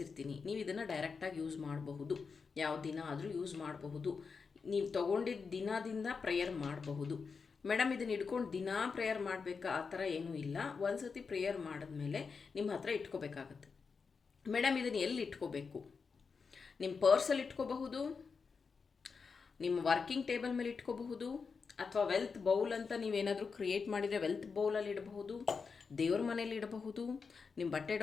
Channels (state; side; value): quieter; right; 5.2 dB